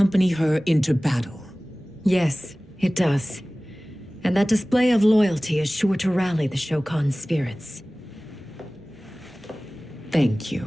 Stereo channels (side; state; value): both; normal; correlation 0.98